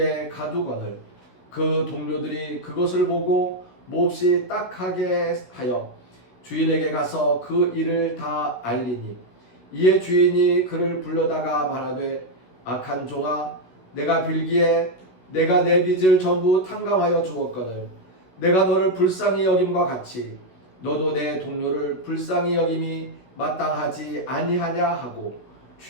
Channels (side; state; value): right; late; 16 ms